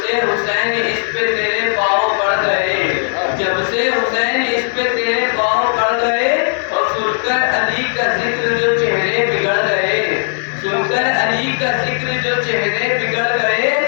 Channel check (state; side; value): silent; right; 69 dB below the other